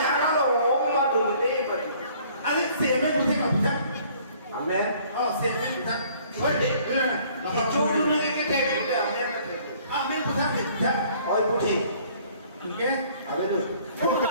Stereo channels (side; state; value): both; inverted; correlation -0.57